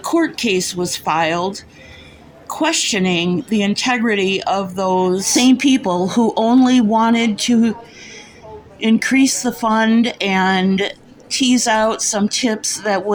case was filed questioning the integrity of those same people who only wanted to increase the fund and tease out some tips that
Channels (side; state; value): both; identical; correlation 1.00